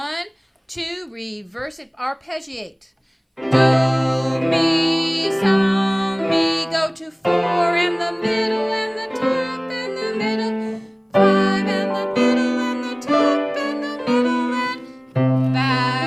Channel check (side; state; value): both; identical; correlation 1.00